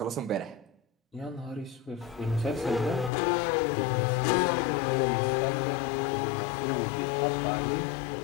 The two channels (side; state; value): right; drops out; at 3.1 s